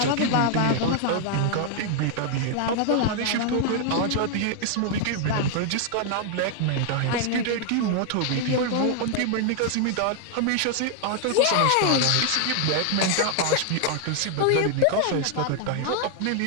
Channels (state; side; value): different; both; correlation 0.00